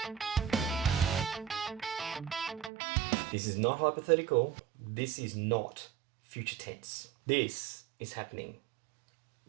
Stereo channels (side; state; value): left; drops out; at 2.7 s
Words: This is not hypothetical. This is not future tense. This is happening